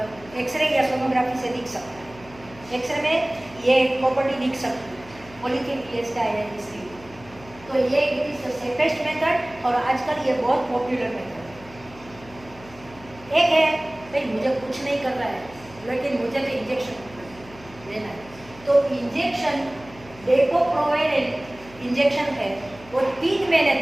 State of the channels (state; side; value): noise; left; hum, 21 dB below the sound